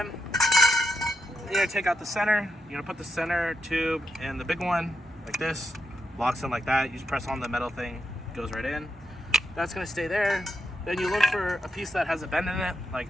You're going to take out the center. You're going to put the center tube in the big one like this. Locks in like that. You just press on the metal thing, goes right in. That's going to stay there. Then you look for a piece that has a bend in it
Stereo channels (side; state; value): both; normal; correlation 0.84